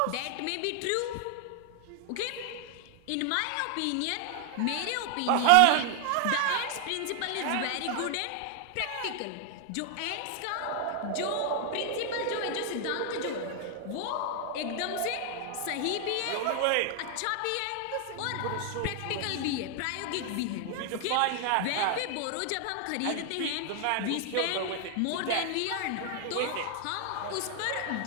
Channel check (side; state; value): both; different; correlation 0.00